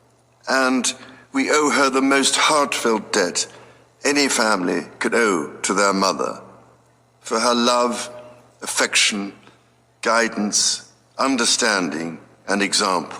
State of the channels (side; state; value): both; identical; correlation 1.00